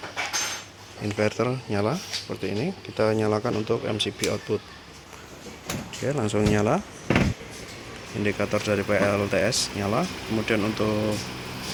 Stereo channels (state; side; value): identical; both; correlation 1.00